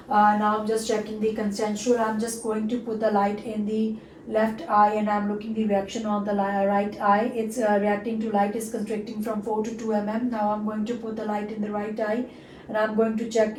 Now I'm just checking the consensual. I'm just going to put the light in the left eye, and I'm looking the reaction on the right eye. It's reacting to light, is constricting from 4 to 2 mm. Now I'm going to put the light in the right eye, and I'm going to check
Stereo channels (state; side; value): identical; both; correlation 1.00